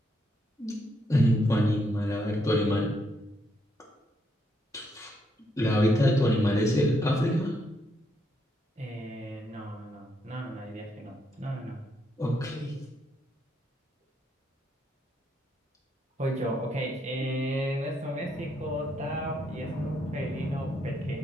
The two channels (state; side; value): normal; both; correlation 0.76